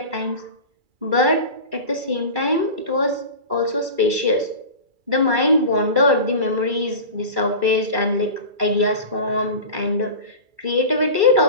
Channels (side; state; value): left; late; 2.3 ms